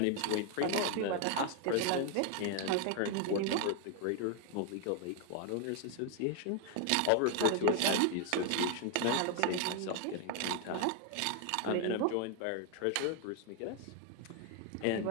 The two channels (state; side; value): different; both; correlation 0.01